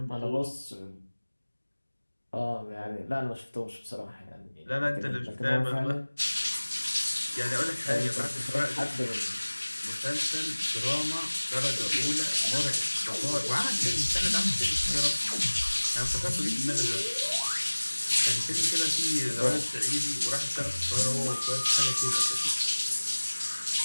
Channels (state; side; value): inverted; both; correlation -1.00